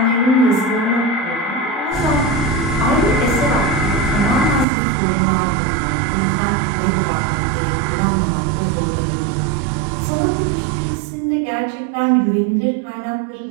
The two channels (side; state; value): left; drops out; at 4.7 s